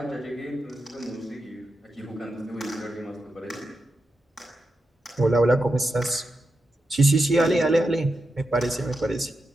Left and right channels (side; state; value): both; normal; correlation 0.88